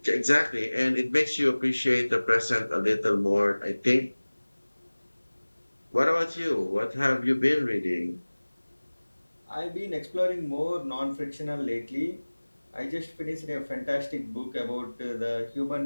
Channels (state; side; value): inverted; both; correlation -1.00